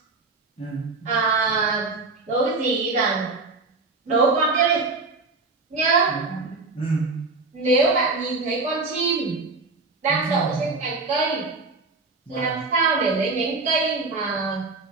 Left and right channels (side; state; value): left; quieter; 3.7 dB